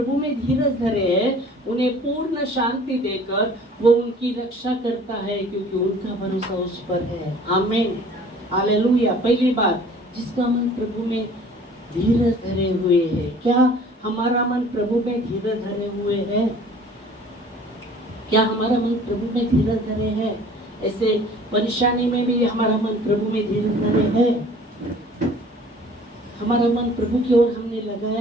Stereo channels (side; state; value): both; normal; correlation 0.49